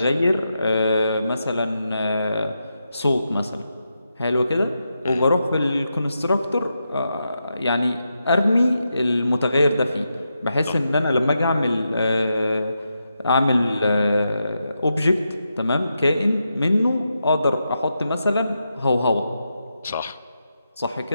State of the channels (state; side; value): inverted; both; correlation -0.86